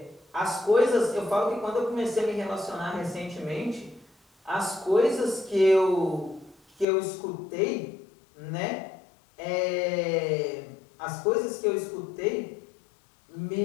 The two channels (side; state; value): right; drops out; at 6.9 s